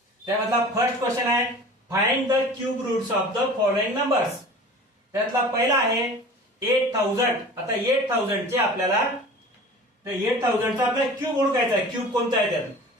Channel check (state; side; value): normal; both; correlation 0.41